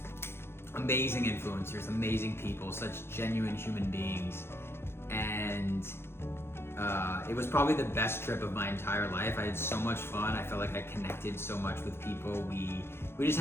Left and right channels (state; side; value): late; right; 0.12 ms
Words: amazing influencers, amazing people, such genuine human beings, and it was probably the best trip of my entire life. I had so much fun. I felt like I connected so much with people. We just